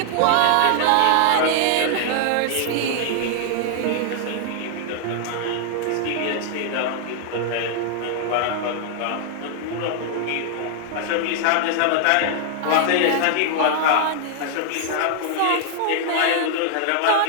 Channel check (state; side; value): different; both; correlation 0.00